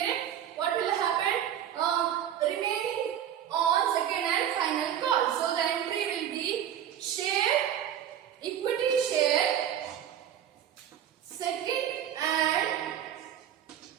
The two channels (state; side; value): quieter; left; 10.1 dB